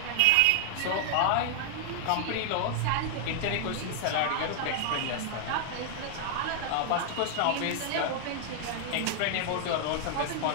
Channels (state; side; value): different; both; correlation 0.00